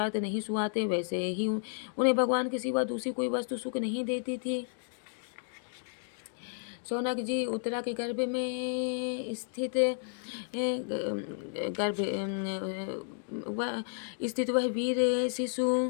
नहीं सुहाते, वैसे ही उन्हें भगवान के सिवा दूसरी कोई वस्तु सुख नहीं देती थी। शौनक जी, उत्तरा के गर्भ में स्थित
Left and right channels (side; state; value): right; silent; digital silence